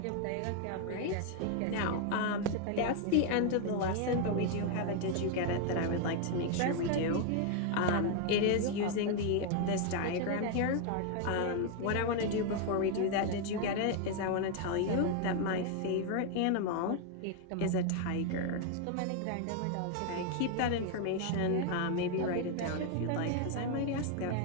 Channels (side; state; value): both; different; correlation 0.00